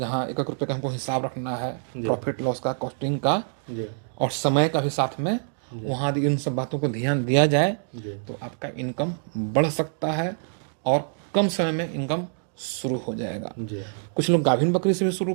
1-1 रुपये का हमको हिसाब रखना है, जी। प्रॉफिट लॉस का, कॉस्टिंग का जी और समय का भी साथ में, वहाँ यदि इन सब बातों को ध्यान दिया जाए जी तो आपका इनकम बढ़ सकता है और कम समय में इनकम शुरू हो जाएगा। जी। कुछ लोग गाभिन बकरी से भी शुरू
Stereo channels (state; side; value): silent; left; digital silence